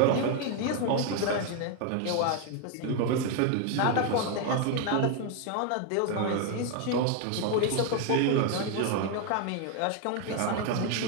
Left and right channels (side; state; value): both; different; correlation 0.01